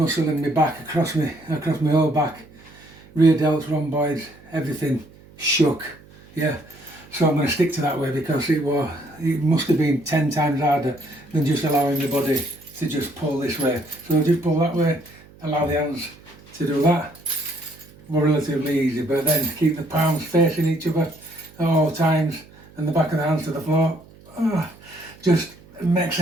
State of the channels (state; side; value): noise; right; hum, 24 dB below the sound